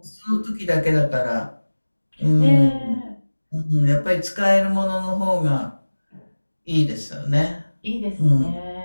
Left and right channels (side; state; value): both; inverted; correlation -1.00